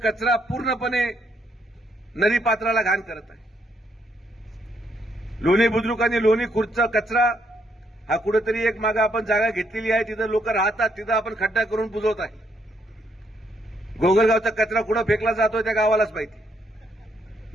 पूर्णपणे नदीपात्राला घाण करत आहे. लोणी बुद्रुक आणि लोणी खुर्दचा कचरा हा कुठेतरी एक मागे आपण जागा घेतलेली आहे, तिथं लोक राहतात, तिथं आपण खड्डा करून बुजवत आहे. गोगलगावचा कचरा कुठं फेकला जातोय त्या गावालाच माहिती.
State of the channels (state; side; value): normal; both; correlation 0.73